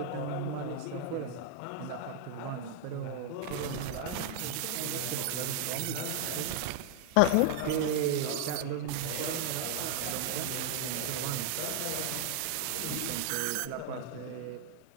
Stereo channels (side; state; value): both; different; correlation 0.00